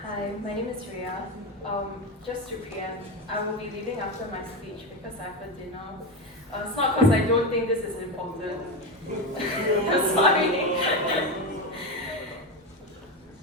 Hi, my name is Reiya. Just to preempt, I will be leaving after my speech because I have a dinner. It's not because I don't think this is important. Sorry.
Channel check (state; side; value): normal; both; correlation 0.15